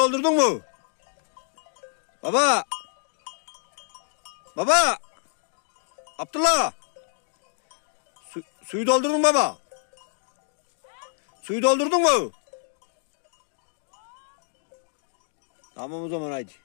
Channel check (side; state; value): right; silent; digital silence